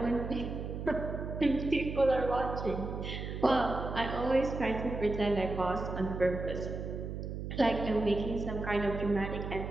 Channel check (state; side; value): noise; right; hum, 6 dB below the sound